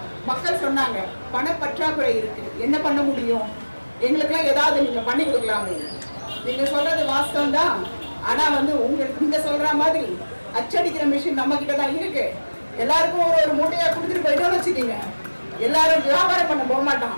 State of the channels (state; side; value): inverted; both; correlation -1.00